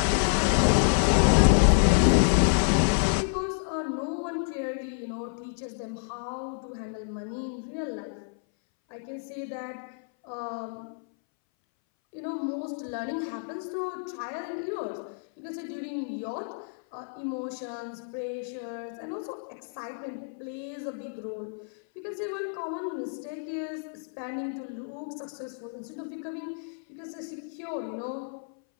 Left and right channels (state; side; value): silent; right; 58 dB below the other